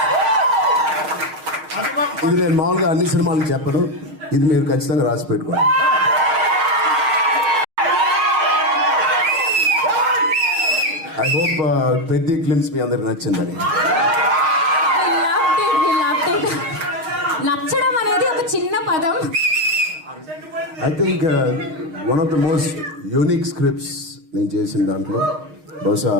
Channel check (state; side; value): late; left; 6.4 ms